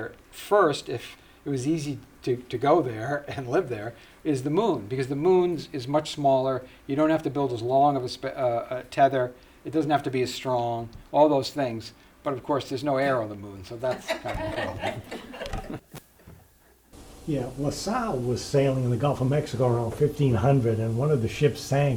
first, if it was easy to go there and live there, is the moon, because the moon is much smaller. You don't have to build as long of a tether. It doesn't have to be as strong. All those things. But of course, there's no air on the moon, so that's kind of a problem. Yeah, LaSalle was sailing in the Gulf of Mexico around 1500, and one of the ships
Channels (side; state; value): both; identical; correlation 1.00